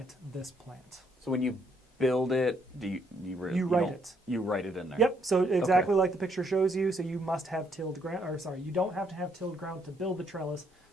this plant. So when you build it, you write don't- it. You write it in there. Yep, so exactly Okay. like the picture shows you, so you must have tilled ground, or sorry, you don't have to have tilled ground to build the trellis.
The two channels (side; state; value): both; normal; correlation 0.71